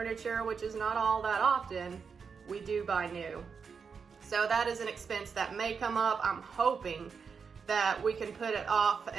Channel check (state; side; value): quieter; left; 5.9 dB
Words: which is not all that often, we do buy new. So that is an expense that may come up. I'm hoping that we can put it off